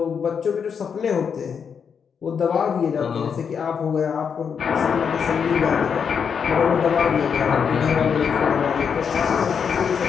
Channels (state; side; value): quieter; right; 6.8 dB